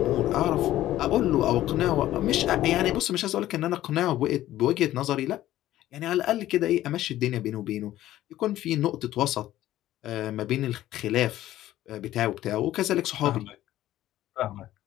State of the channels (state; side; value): quieter; right; 14.1 dB